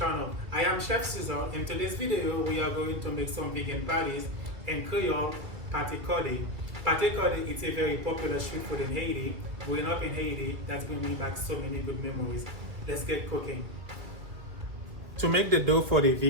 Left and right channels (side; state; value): left; late; 2.0 ms